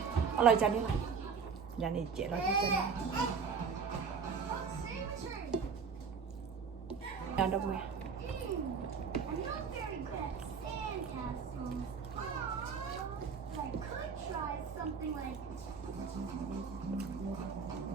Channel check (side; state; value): left; quieter; 5.7 dB